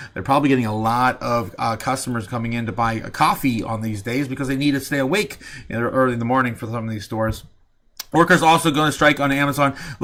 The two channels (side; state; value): both; identical; correlation 1.00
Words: They're probably getting a lot of customers coming in to buy a coffee on these days because they need to stay awake early in the morning for some of these stores. Workers also going to strike on Amazon.